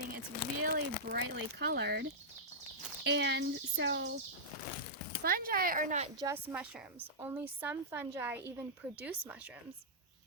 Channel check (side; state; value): both; normal; correlation -0.11